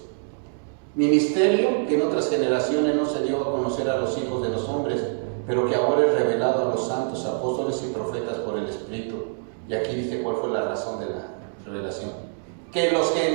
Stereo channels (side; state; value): left; silent; digital silence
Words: Ministerio que en otras generaciones no se dio a conocer a los hijos de los hombres, pero que ahora es revelado a los santos apóstoles y profetas por el Espíritu. Y aquí dice cuál fue la razón de la revelación. Que los